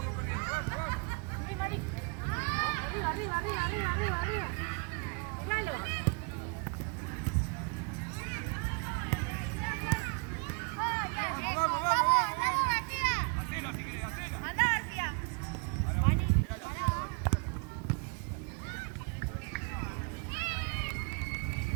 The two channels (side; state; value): left; quieter; 33.6 dB